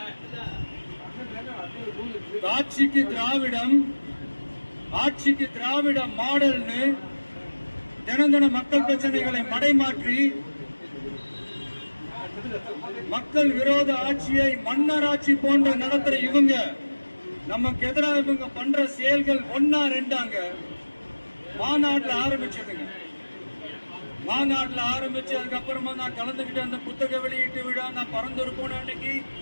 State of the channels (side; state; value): both; inverted; correlation -1.00